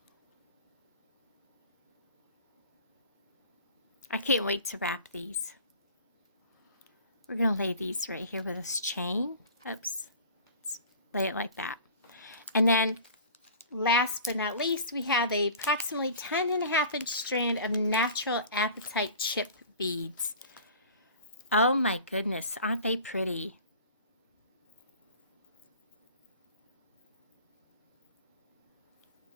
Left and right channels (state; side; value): inverted; both; correlation -0.42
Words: I can't wait to wrap these. We're going to lay these right here with this chain. Oops. Let's lay it like that. And then last but not least, we have a approximately 10.5-inch strand of natural apatite chip beads. Oh my goodness, aren't they pretty?